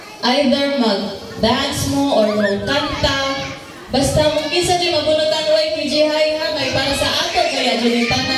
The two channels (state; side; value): identical; both; correlation 1.00